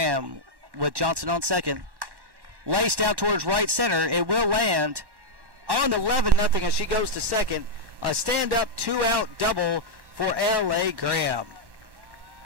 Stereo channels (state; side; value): late; left; 1.1 ms